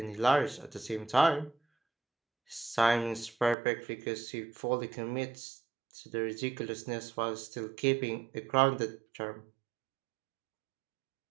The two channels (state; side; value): drops out; left; at 3.6 s